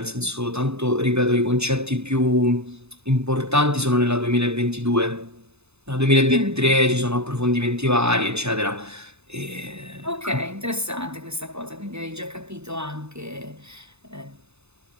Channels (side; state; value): left; late; 0.80 ms